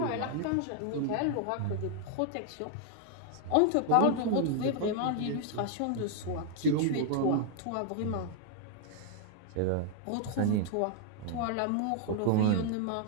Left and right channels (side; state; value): both; different; correlation 0.00